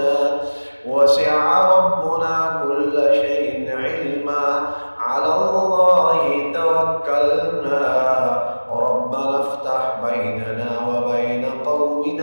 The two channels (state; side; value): inverted; both; correlation -1.00